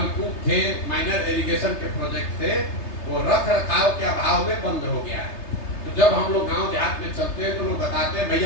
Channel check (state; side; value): late; right; 3.3 ms